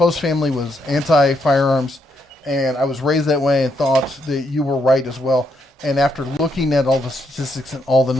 family was anti-firearms, and I was raised that way and thought that you were right as well. And after looking at all the statistics and all the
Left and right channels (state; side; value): normal; both; correlation 0.77